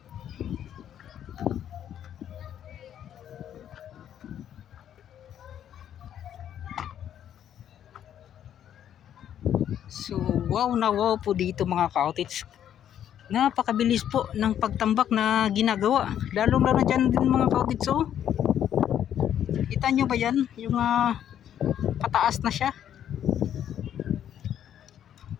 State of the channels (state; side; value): quieter; right; 10.1 dB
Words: So wow na wow po dito mga cottage. Napakabilis po ng pagtambak na ginagawa, lalo na dyan din mga cottage. So kita nyo ba yan, yung pataas na siya.